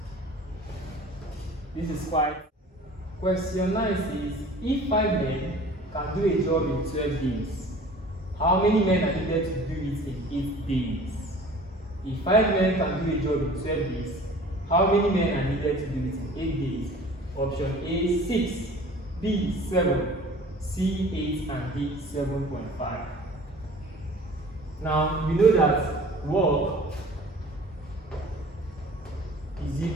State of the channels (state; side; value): normal; both; correlation 0.45